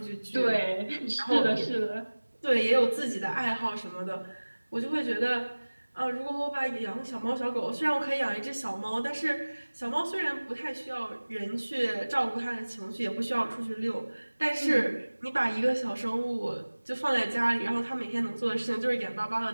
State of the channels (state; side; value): inverted; both; correlation -1.00